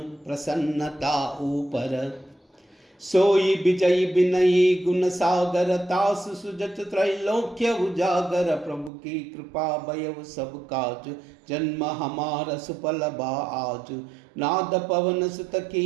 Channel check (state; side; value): drops out; left; at 8.9 s